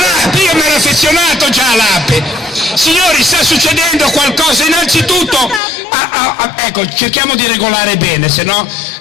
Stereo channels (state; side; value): drops out; right; at 5.6 s